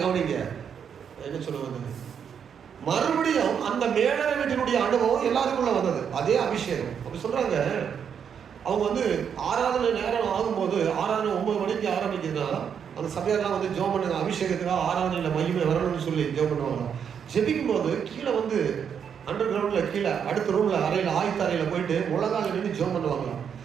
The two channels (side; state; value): left; quieter; 7.6 dB